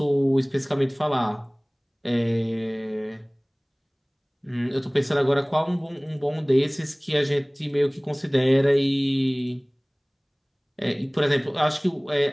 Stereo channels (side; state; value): both; identical; correlation 1.00